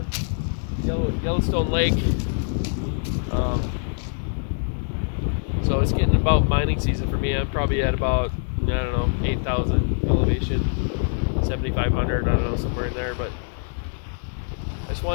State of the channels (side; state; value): right; silent; digital silence